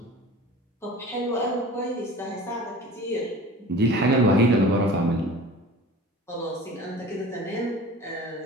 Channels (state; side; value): normal; both; correlation 0.40